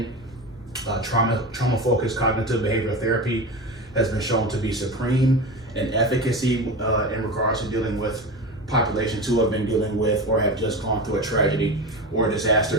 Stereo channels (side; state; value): both; normal; correlation 0.26